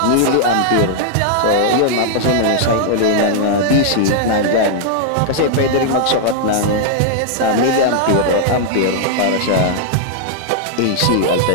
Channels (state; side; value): different; both; correlation -0.01